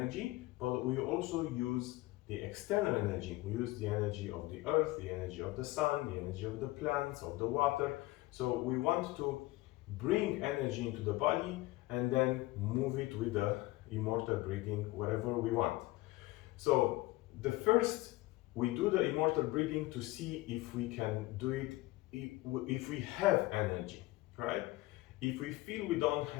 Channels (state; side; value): quieter; right; 19.7 dB